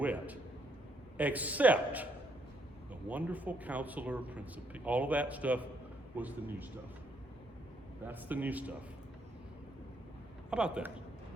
except the wonderful counselor, Prince of Peace. All of that stuff was the new stuff. That's the new stuff. How about that?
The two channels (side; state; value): both; normal; correlation 0.72